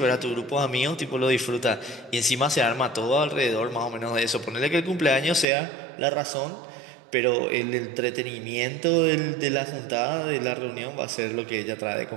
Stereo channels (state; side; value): drops out; left; at 5.5 s